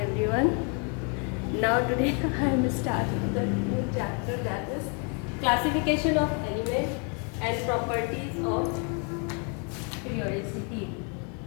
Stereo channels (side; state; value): right; quieter; 37.7 dB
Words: Now today I am starting the new chapter, that is classification of elements and properties of periodicity.